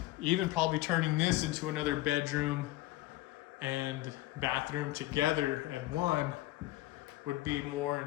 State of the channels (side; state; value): right; quieter; 17.0 dB